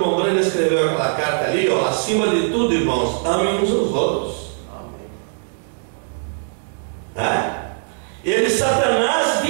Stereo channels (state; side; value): silent; left; digital silence